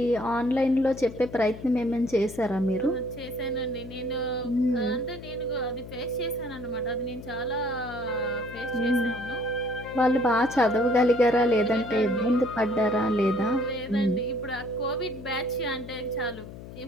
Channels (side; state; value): left; noise; hum, 14 dB below the sound